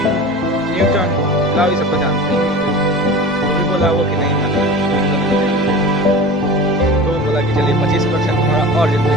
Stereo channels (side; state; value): both; normal; correlation 0.34